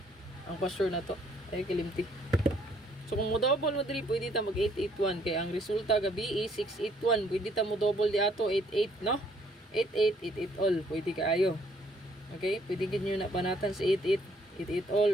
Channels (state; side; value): normal; both; correlation 0.65